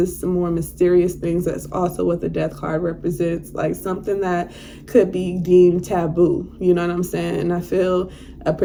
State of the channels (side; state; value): both; identical; correlation 1.00